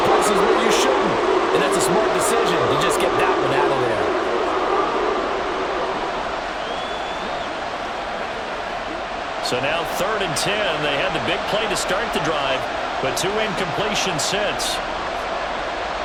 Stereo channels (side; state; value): both; identical; correlation 1.00